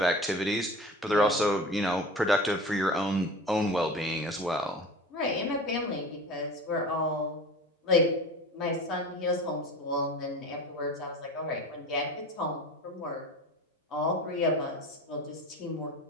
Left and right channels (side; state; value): both; normal; correlation 0.35